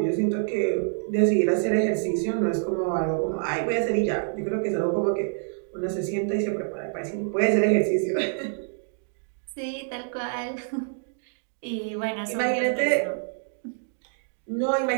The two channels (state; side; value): silent; left; digital silence